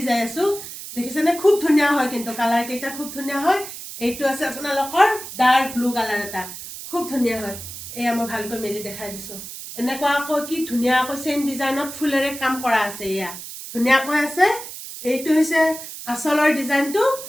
যাই আছো দেখিছেনে খুব ধুনীয়া হয় কিন্তু কালাৰ কেইটা খুব ধুনীয়া হয় এইটো আছে আপোনালোকৰ ডাৰ্ক ব্লু কালাৰ এটা খুব ধুনীয়া হয় এয়া মই ভালকৈ মেলি দেখাই দিছো এনেকুৱা আকৌ কি ধুনীয়া আকৌ চেম ডিজাইনত ফুলেৰে কাম কৰা আছে এয়া ধুনীয়াকৈ আছে এইটো হৈছে আসলৰ ডিজাইনটো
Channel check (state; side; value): noise; right; hiss, 11 dB below the sound